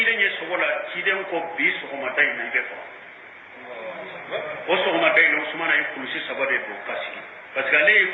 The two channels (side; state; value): both; identical; correlation 1.00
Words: sogola ciden ko bi sogomata ina be fa o sogomata ina usman ay kulusi sabade do kasi parce que